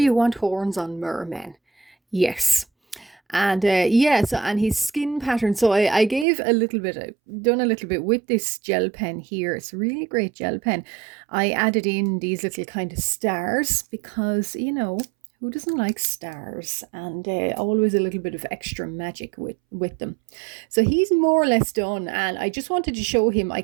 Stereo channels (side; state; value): left; drops out; at 6.2 s